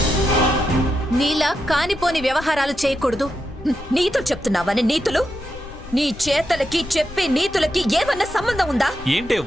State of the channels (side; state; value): left; noise; rumble, 15 dB below the sound